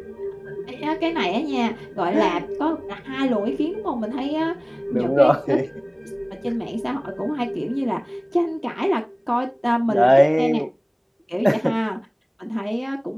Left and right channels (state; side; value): identical; both; correlation 1.00